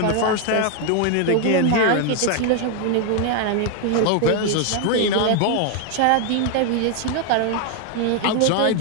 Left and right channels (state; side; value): different; both; correlation 0.01